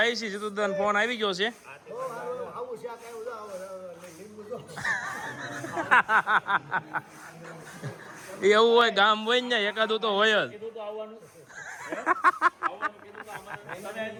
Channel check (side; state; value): both; identical; correlation 1.00